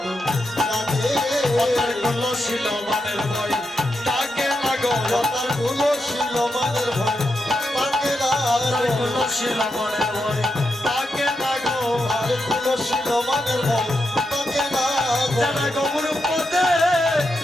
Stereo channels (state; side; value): normal; both; correlation 0.85